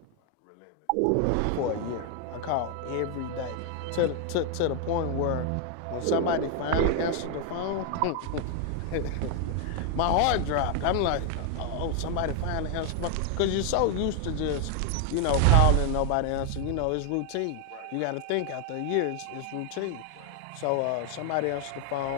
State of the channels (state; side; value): different; both; correlation 0.00